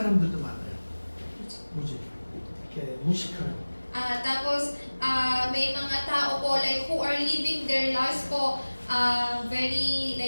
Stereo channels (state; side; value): inverted; both; correlation -1.00